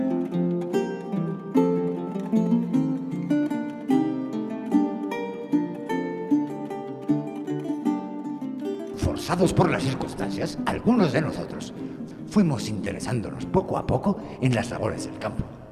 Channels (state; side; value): identical; both; correlation 1.00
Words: Forzados por las circunstancias, algunos de nosotros fuimos interesándonos poco a poco en las labores del campo,